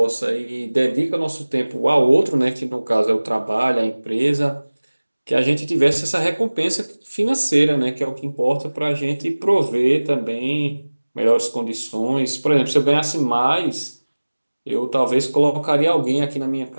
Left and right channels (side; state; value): both; inverted; correlation -1.00